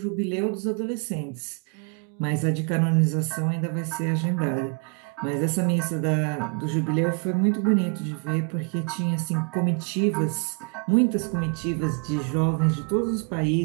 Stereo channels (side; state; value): left; quieter; 36.9 dB